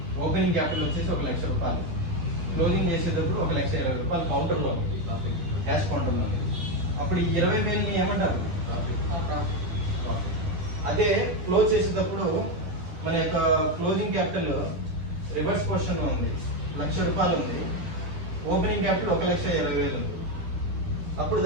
ఓపెనింగ్ క్యాపిటల్ వచ్చేసి ₹1,00,000, క్లోజింగ్ చేసేటప్పుడు ₹1,20,000 కౌంటర్లో ఉంది, క్యాష్ కౌంటర్లో ఉంది. అప్పుడు ఈ 20,000ని ఏమంటారు? అదే క్లోజ్ చేసేటప్పుడు మన యొక్క క్లోజింగ్ క్యాపిటల్ రివర్స్ పొజిషన్ లో ఉంది, ₹1,00,000 ఉంది, ఓపెనింగ్ క్యాపిటల్ 1,20,000 ఉంది. అప్పుడు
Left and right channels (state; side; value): late; left; 11 ms